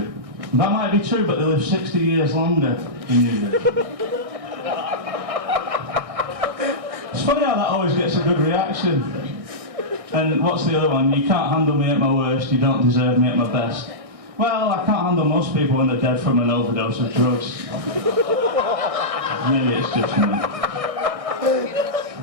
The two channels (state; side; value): late; left; 1.6 ms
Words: That might be true, but they live 60 years longer than you do. It's funny how that always gets a good reaction. And what's the other one? You can't handle me at my worst, you don't deserve me at my best. Well, I can't handle most people when they're dead from an overdose of drugs. Maybe it's just me.